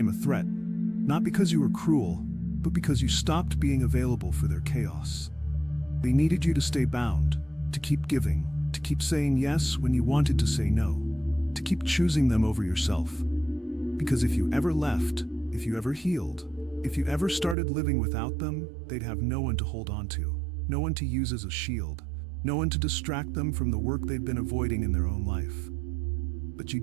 a threat. Not because you were cruel, but because you stopped being available for their chaos. They needed you to stay bound, to keep giving, to keep saying yes when you wanted to say no, to keep choosing them over yourself. Because if you ever left, if you ever healed, if you ever started living without them, they'd have no one to hold on to, no one to use as a shield, no one to distract them from the work they'd been avoiding in their own life. But you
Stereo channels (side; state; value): left; drops out; at 17.6 s